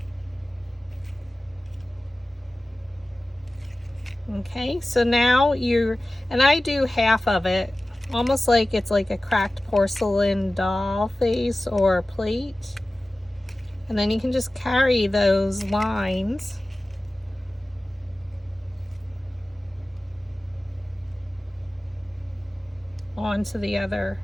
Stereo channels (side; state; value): both; normal; correlation 0.96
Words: Okay, so now and I do half of it, almost like it's like a cracked porcelain doll face or plate. And then you can just carry those lines onto the other